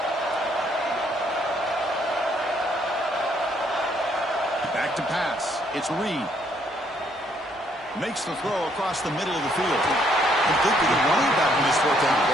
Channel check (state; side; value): normal; both; correlation 0.69